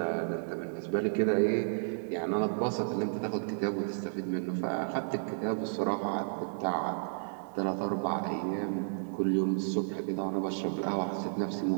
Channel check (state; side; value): silent; left; digital silence